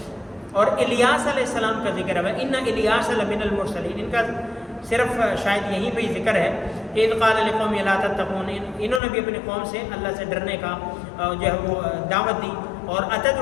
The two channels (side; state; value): right; drops out; at 9.0 s